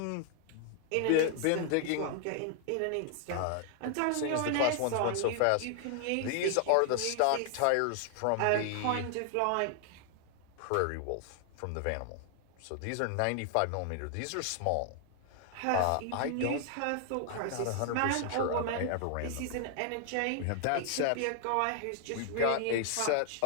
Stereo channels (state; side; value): different; both; correlation 0.00